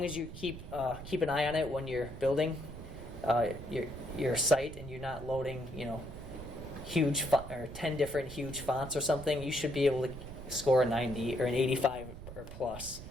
as you keep an eye on it when you're building your site and you're not loading, huge or 10 different huge fonts or something, you should be able to score a 90 or an 85 or plus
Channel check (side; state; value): right; noise; rumble, 12 dB below the sound